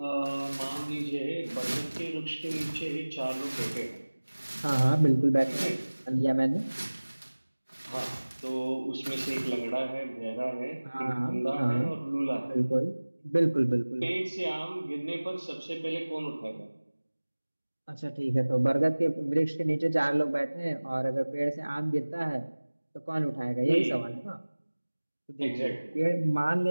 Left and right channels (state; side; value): inverted; both; correlation -1.00